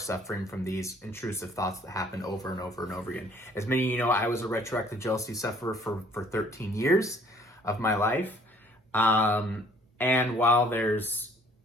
from these intrusive thoughts that happen over and over and over again. As many of you know, I was a retroactive jealousy sufferer for 13 years of my life. And while there's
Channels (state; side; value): normal; both; correlation 0.58